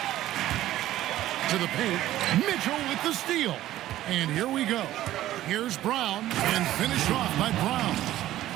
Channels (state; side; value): quieter; left; 14.1 dB